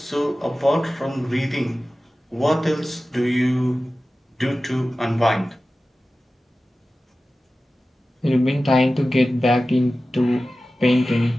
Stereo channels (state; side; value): normal; both; correlation 0.95